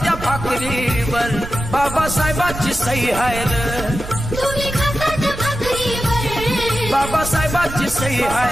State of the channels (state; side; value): noise; right; rumble, 10 dB below the sound